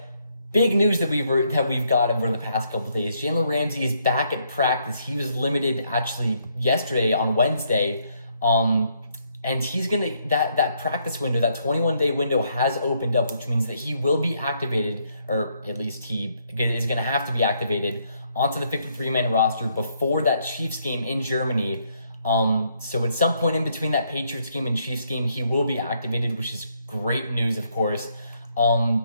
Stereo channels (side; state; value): both; inverted; correlation -0.73